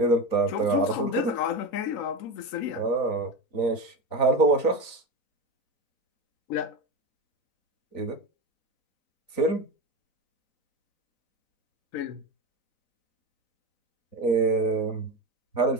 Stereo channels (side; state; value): right; late; 3.9 ms